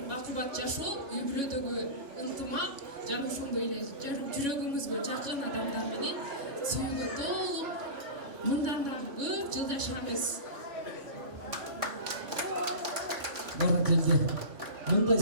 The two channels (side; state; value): left; late; 3.6 ms